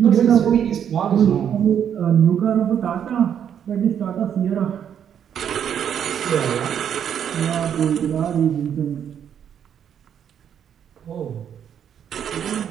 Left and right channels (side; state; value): left; quieter; 8.8 dB